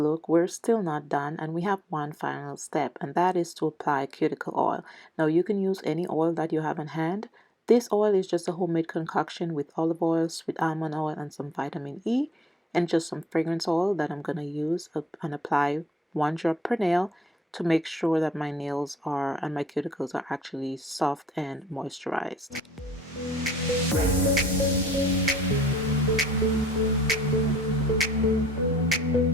we're still not done, and we have one final step, and that is to apply cuticle oil. Now you can use any oil that you have in hand. This oil is just a homemade concoction with olive oil, sweet almond oil, and some vitamin E, and just some fragrance oil that I'm going to use and apply 1 drop per nail to make sure that my nails are and my cuticles are actually soft and moisturized.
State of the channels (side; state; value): both; normal; correlation 0.67